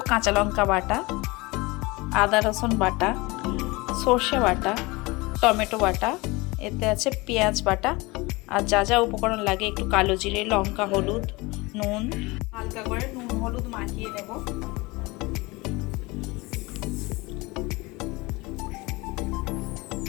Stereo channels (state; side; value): quieter; right; 23.7 dB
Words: কাঁচা লঙ্কা বাটা, আদা রসুন বাটা, সর্ষে বাটা, টমেটো বাটা, এতে আছে পেঁয়াজ বাটা, আর যা যা উপকরণ লাগে একটু কালো জিরে, লঙ্কা, হলুদ, নুন, হালকা করে নুন হলুদ মাখিয়ে নেব।